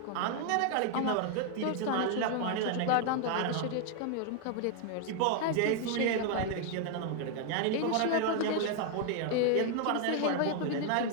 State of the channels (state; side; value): different; both; correlation 0.00